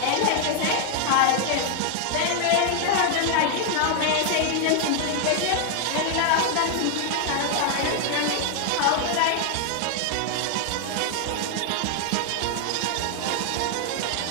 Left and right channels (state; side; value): different; both; correlation 0.00